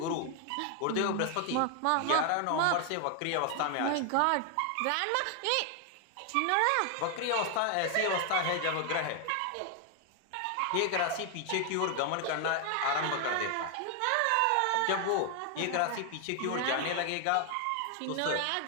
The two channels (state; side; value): different; both; correlation 0.00